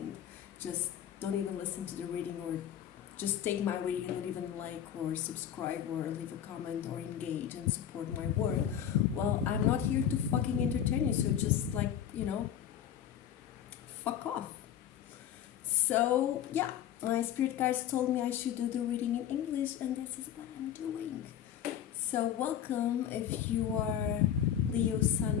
just don't even listen to the reading, or just take my reading and don't even like or subscribe or leave a comment or engage and support my work, well, I'm not here to fucking entertain you, so just fuck off. So yeah, my spirit guides told me I should do the reading in English, and this is what I'm doing. So welcome if you are Leo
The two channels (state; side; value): quieter; right; 9.9 dB